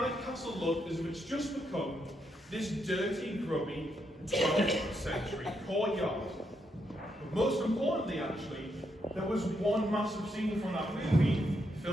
Castle look as if it's just become this dirty, grubby 12th century courtyard. But most importantly, actually, there was one massive scene from that movie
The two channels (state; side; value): normal; both; correlation 0.79